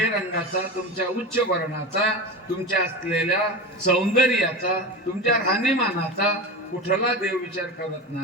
तुमच्या उच्च वर्णाचा, तुमच्या असलेल्या सौंदर्याचा, तुमच्या राहणीमानाचा कुठला देव विचार करत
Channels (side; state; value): both; normal; correlation 0.25